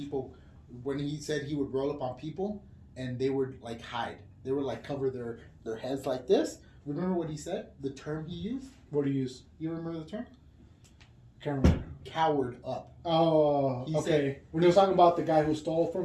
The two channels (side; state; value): both; identical; correlation 1.00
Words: when he said he would roll up on people and they would like hide. They would like cover their heads like this. Remember what he said? The term he used? What do you use? You remember the term? Can't remember. Cowered up. Oh, He okay. said- When he was talking about the guy who stole